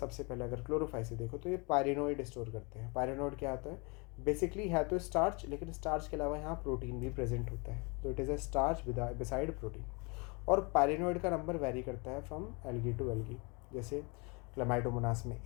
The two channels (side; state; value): right; quieter; 30.4 dB